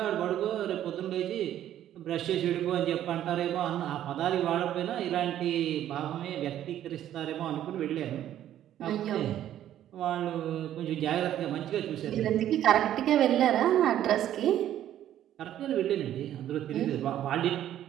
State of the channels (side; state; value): left; quieter; 11.6 dB